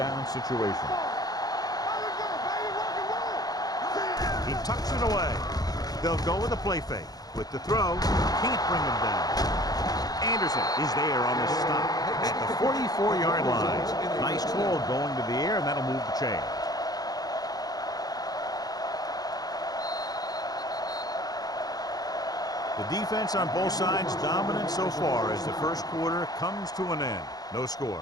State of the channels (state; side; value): late; right; 0.19 ms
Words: situation. He tucks it away. They'll go with a play fake. With the throw, can't bring him down. Anderson is there on the stop at the 44-yard line. Nice call going to the air, and that'll move the chains. The defense on both sides dominant so far as the first quarter comes to an end. No